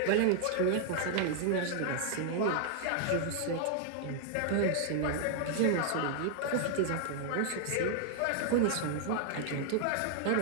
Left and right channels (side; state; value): both; different; correlation 0.00